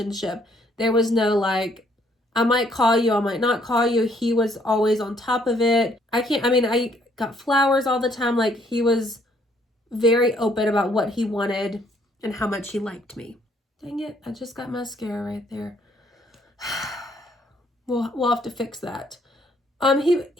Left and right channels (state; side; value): normal; both; correlation 0.66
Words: There was no like, I might call you, I might not call you. He was always on top of it. I got flowers all the time. Like, he was very open about what he wanted and how much he liked me. Dang it, I just got mascara right there. We'll have to fix that.